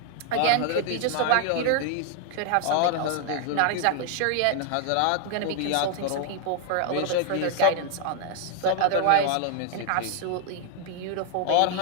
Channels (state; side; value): different; both; correlation 0.00